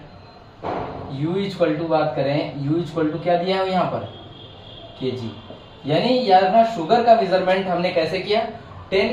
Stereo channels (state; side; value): identical; both; correlation 1.00